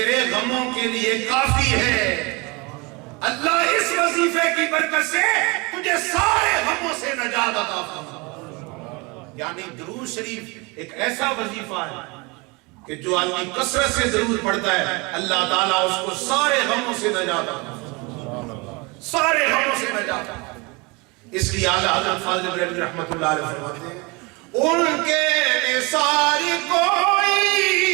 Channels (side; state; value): left; quieter; 27.2 dB